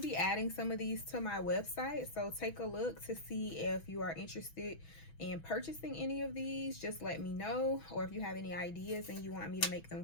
adding some of these to my website. So take a look to see if you are interested in purchasing any of these. Just let me know. Or if you have any ideas and you want me to make them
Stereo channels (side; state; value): right; late; 6.1 ms